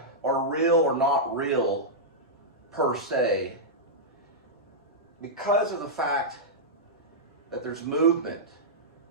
are real or not real per se, because of the fact that there's movement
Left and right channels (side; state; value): both; normal; correlation -0.10